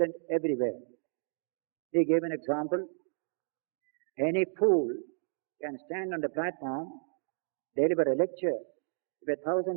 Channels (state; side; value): silent; left; digital silence